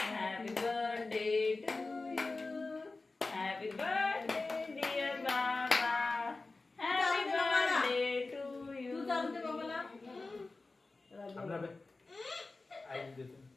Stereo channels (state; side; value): quieter; right; 3.5 dB